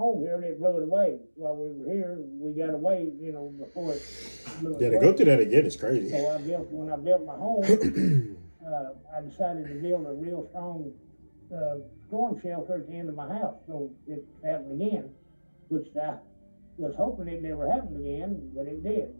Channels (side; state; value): both; inverted; correlation -1.00